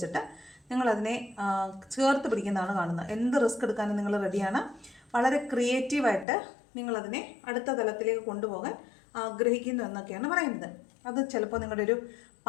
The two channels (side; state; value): right; drops out; at 6.2 s